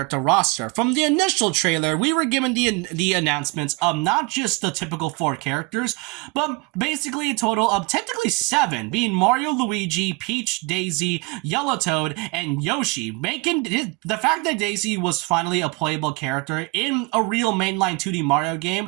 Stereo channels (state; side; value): quieter; left; 27.7 dB